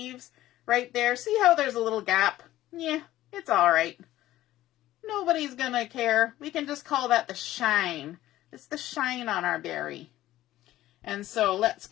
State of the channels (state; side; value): quieter; right; 14.8 dB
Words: right there. See how there's a little gap? Yeah, it's all right. Nobody's going to care. We can just call that the shine. It's the shine on our berry. And so let's